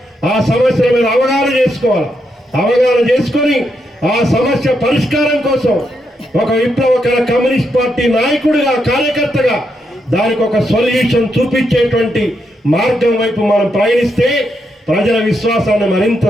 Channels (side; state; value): both; normal; correlation 0.81